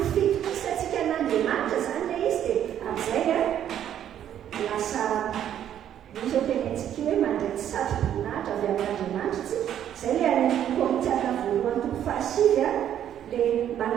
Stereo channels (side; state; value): left; quieter; 10.4 dB